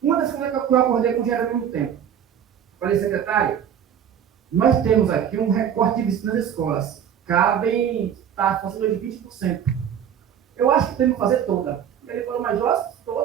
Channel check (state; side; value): quieter; left; 8.9 dB